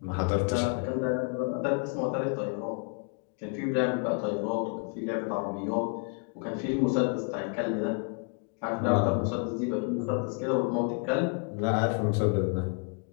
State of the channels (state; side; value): quieter; right; 39.1 dB